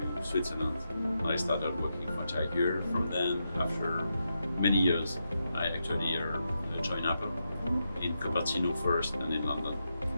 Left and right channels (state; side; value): inverted; both; correlation -0.86